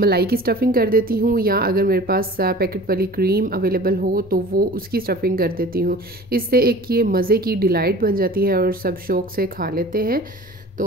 की स्टफ़िंग कर देती हूँ, या अगर मेरे पास पैकेट वाली क्रीम अवेलेबल हो तो वो उसकी स्टफ़िंग कर देती हूँ। इससे एक ये मज़े की डिलाइट बन जाती है और सब शौक़ से खा लेते हैं।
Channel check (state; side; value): normal; both; correlation 0.42